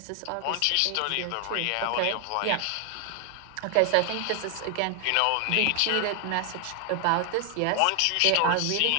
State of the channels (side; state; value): both; different; correlation 0.00